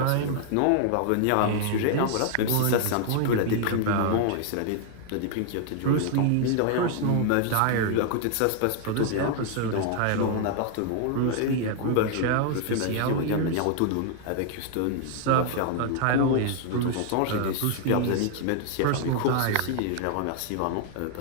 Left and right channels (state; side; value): different; both; correlation 0.00